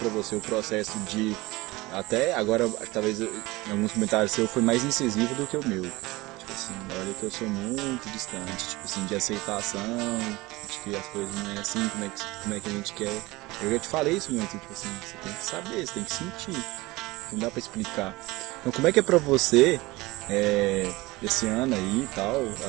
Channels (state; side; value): quieter; left; 21.1 dB